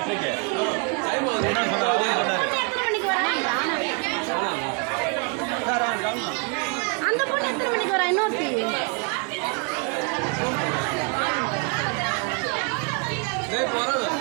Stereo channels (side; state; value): left; quieter; 34.3 dB